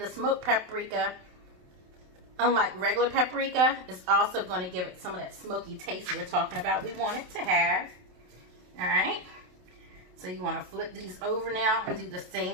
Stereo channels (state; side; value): late; left; 28 ms